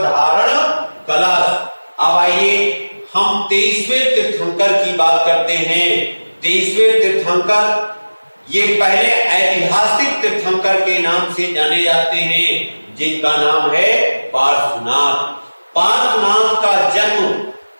धारण कलश। अब आइए हम 23वें तीर्थंकर की बात करते हैं। 23वें तीर्थंकर ये पहले ऐतिहासिक तीर्थंकर के नाम से जाने जाते हैं, जिनका नाम है पार्श्वनाथ। पार्श्वनाथ का जन्म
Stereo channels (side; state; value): both; inverted; correlation -1.00